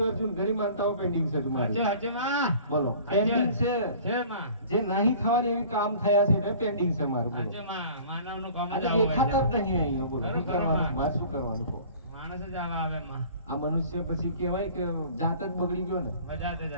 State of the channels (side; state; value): both; inverted; correlation -0.47